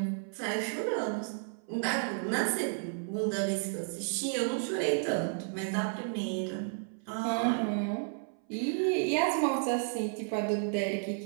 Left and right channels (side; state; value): left; silent; 56 dB below the other